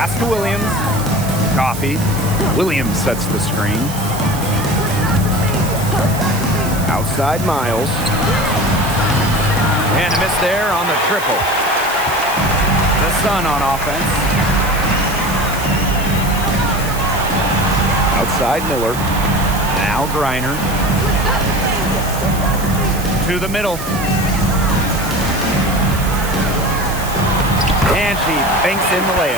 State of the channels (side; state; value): right; noise; hiss, 11 dB below the sound